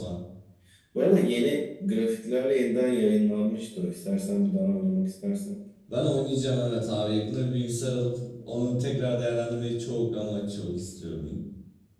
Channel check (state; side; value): identical; both; correlation 1.00